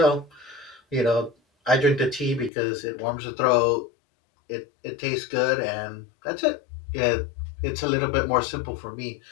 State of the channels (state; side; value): drops out; right; at 2.5 s